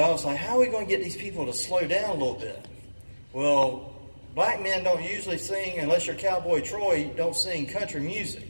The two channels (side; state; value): both; inverted; correlation -1.00